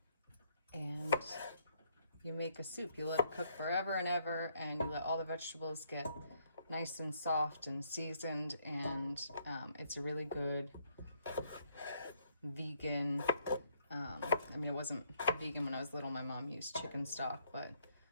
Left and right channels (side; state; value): both; inverted; correlation -0.71